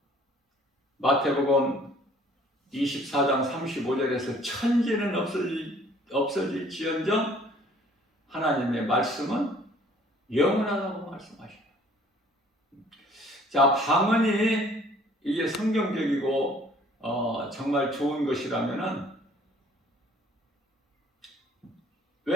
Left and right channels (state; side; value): normal; both; correlation 0.56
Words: 마태복음 24장 35절에서 천지는 없어질지언정 하나님의 말씀은 영원하다고 말씀하셔요. 자, 방언이 이게 성경적이고 정말 좋은 것이라면은